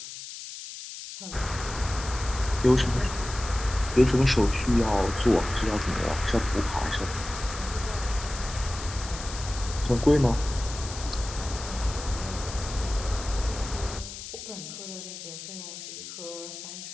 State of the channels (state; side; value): noise; left; hiss, 11 dB below the sound